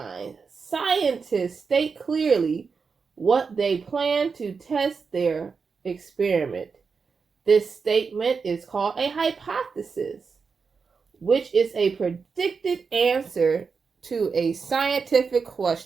scientists state clearly what they plan to test their experiment. This statement is called a hypothesis, which is a predicted answer to a scientific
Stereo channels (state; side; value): quieter; left; 5.2 dB